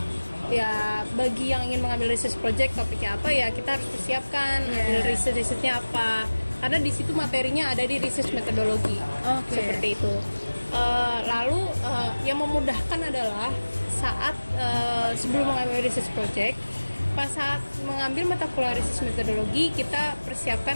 ya bagi yang ingin mengambil research project topiknya apa ya kita harus persiapkan ambil researchnya apa, karena di situ materinya ada di research methodology. Seperti itu. Lalu yang memudahkan adalah saat sebelum mengambil research project, pas saat mengambil mata kuliah research methodology kita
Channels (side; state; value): both; inverted; correlation -1.00